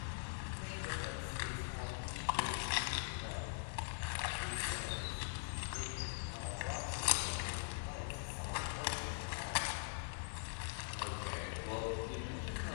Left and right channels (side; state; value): right; silent; digital silence